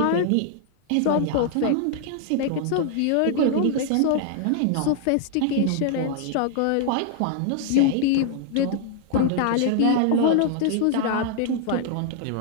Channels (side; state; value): both; different; correlation -0.01